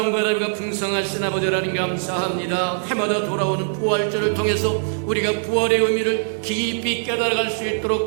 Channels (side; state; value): left; silent; 64 dB below the other